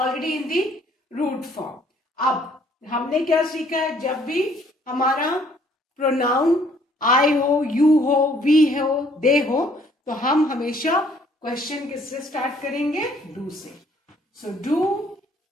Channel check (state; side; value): normal; both; correlation 0.62